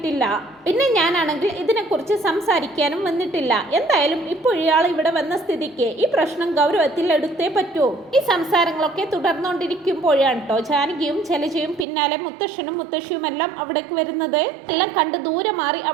പിന്നെ ഞാനാണെങ്കിൽ ഇതിനെക്കുറിച്ച് സംസാരിക്കാനും വന്നിട്ടില്ല. എന്തായാലും ഇപ്പോൾ ഇയാൾ ഇവിടെ വന്ന സ്ഥിതിക്ക് ഈ പ്രശ്നം ഗൗരവത്തിൽ എടുത്തേ പറ്റൂ. ഈ സംസാരങ്ങളൊക്കെ തുടർന്നുകൊണ്ടിരിക്കുമ്പോഴാണ് കേട്ടോ ജാനകിയും ജലജയും പിന്നാലെ മുത്തശ്ശനും മുത്തശ്ശിയുമെല്ലാം അവിടേക്ക് വരുന്നത്. എല്ലാം കണ്ട് ദൂരെ മാറി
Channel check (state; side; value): drops out; left; at 11.9 s